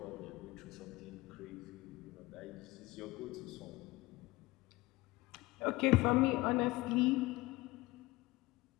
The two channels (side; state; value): right; quieter; 20.6 dB